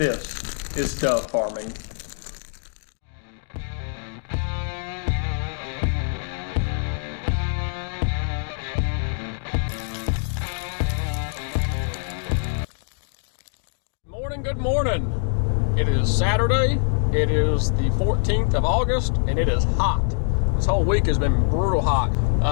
is dove farming. Good morning. It is Saturday. It is the 14th of August and it is hot. This whole week has been brutal hot.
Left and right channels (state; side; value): silent; right; digital silence